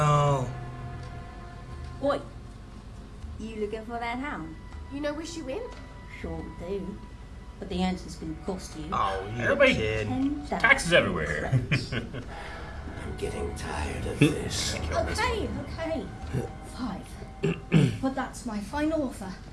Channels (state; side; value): identical; both; correlation 1.00